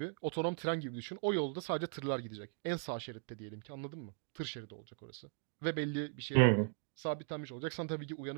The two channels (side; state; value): left; quieter; 39.5 dB